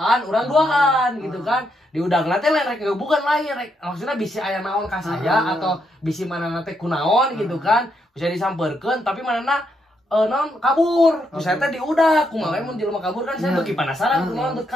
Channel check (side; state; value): both; normal; correlation 0.78